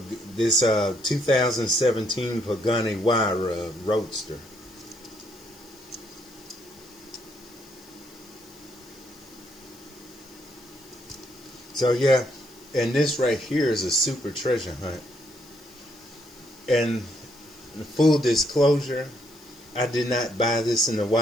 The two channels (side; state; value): left; noise; hiss, 24 dB below the sound